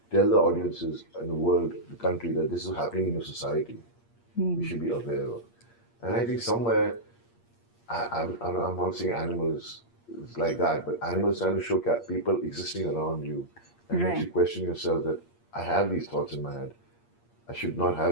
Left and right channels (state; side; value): late; right; 8.6 ms